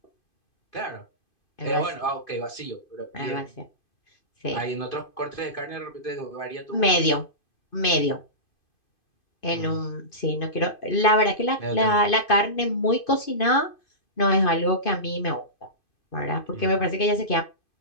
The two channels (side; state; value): right; late; 2.5 ms